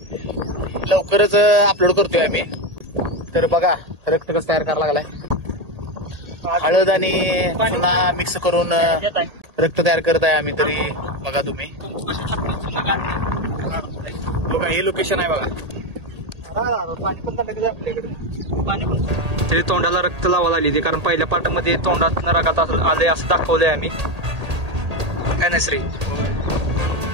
लवकरच अपलोड करतोय आम्ही. तर बघा रक्त कसं तयार करायला लागलाय. हळद आणि पुन्हा मिक्स करून रक्त तयार करत आहे आम्ही. तरी बघा तुम्ही, बघा हे लोकेशन आहे बघा. तरी तोंडाला रक्त लावायला आली, कारण पहिल्या पार्टमध्ये तोंडात रगात आले असं दाखवलंय आम्ही. काय नाही श्री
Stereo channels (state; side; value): late; left; 1.8 ms